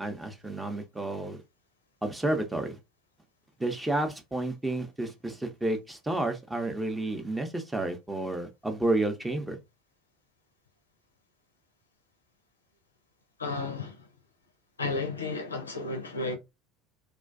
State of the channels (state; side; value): normal; both; correlation 0.62